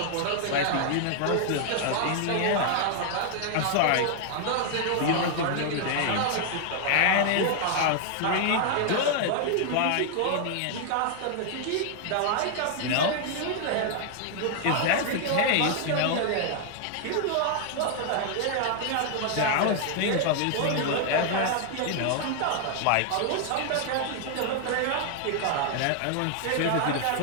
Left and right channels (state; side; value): different; both; correlation 0.00